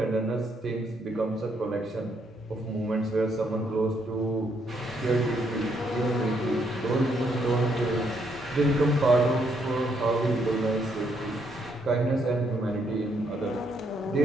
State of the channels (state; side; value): normal; both; correlation 0.74